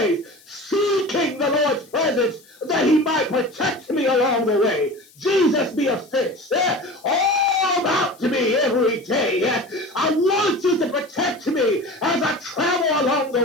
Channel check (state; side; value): noise; left; hiss, 27 dB below the sound